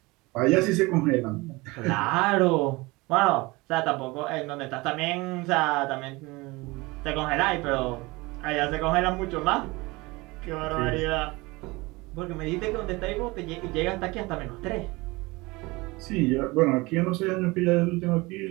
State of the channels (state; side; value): quieter; left; 23.2 dB